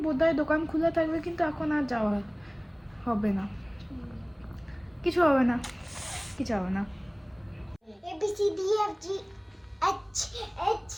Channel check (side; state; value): both; identical; correlation 1.00